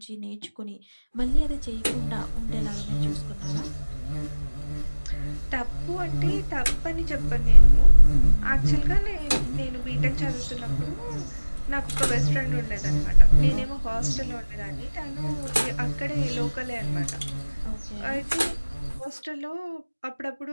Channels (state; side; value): inverted; both; correlation -1.00